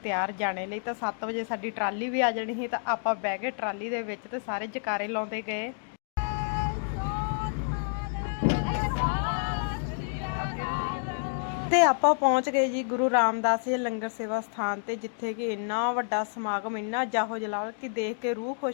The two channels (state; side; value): silent; right; digital silence